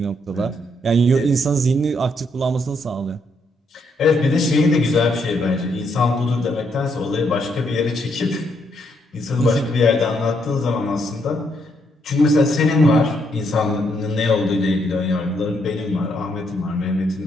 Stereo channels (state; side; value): normal; both; correlation 0.75